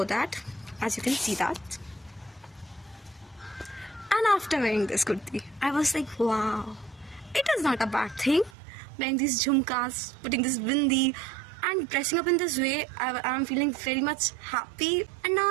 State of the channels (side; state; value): left; drops out; at 8.6 s